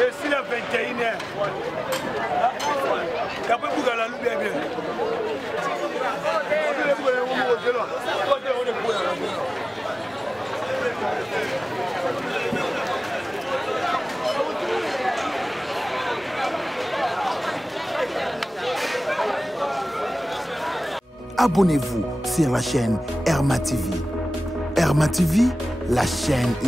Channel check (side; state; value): both; normal; correlation 0.98